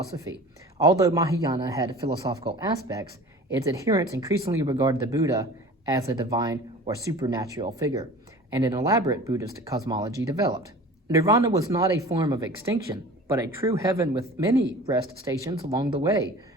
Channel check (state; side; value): normal; both; correlation 0.41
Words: Although Mahayana had philosophical aspects, its adherents increasingly regarded the Buddha as a divine or supernatural figure, and an elaborate Buddhist cosmology developed. Nirvana was not a form of extinction, but a true heaven with many rest stations along the way